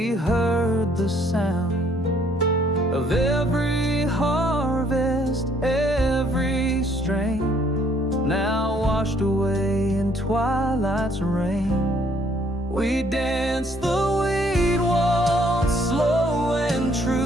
heard the sound of every harvest, every strain, now washed away in twilight's rain. We danced the weed waltz, slow and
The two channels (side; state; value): both; normal; correlation 0.65